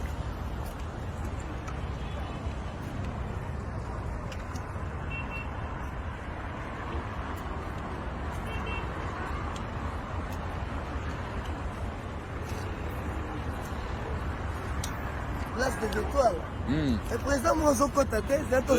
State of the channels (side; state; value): both; identical; correlation 1.00